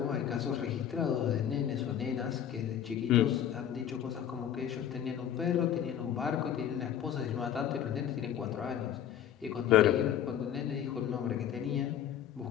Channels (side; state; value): right; quieter; 9.9 dB